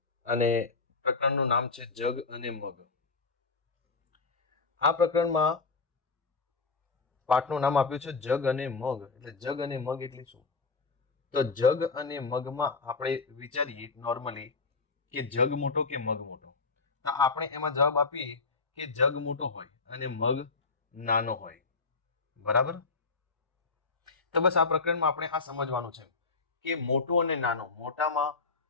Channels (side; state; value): right; quieter; 4.3 dB